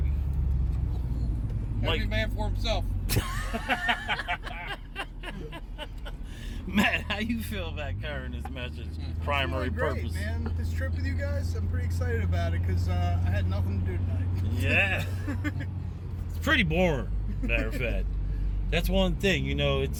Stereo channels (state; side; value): identical; both; correlation 1.00